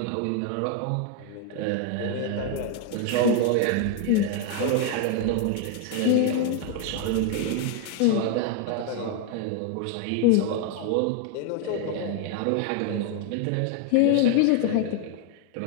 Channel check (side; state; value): both; different; correlation 0.00